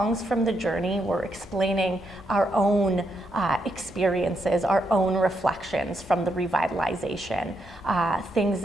from the Journey we're explaining our own experiences, our own reflections from the revitalization, things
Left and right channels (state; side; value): normal; both; correlation 0.80